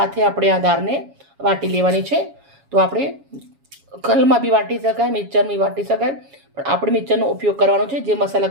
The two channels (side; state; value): left; late; 7.2 ms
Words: આપણે આ દાળને વાટી લેવાની છે. તો આપણે કલમાં બી વાટી શકાય, મિક્સરમાં બી વાટી શકાય, પણ આપણે મિક્સરનો ઉપયોગ કરવાનો છે. જે